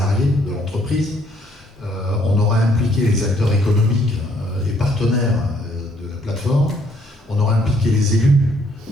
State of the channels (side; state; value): both; normal; correlation 0.66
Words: de l'entreprise. On aura impliqué les acteurs économiques et partenaires de la plateforme. On aura impliqué les élus.